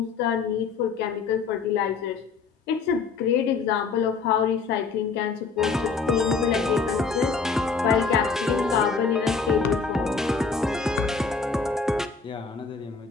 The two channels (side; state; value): right; quieter; 4.9 dB